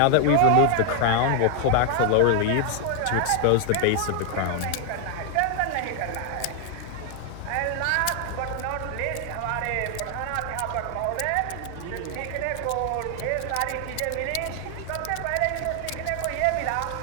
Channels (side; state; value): both; different; correlation 0.00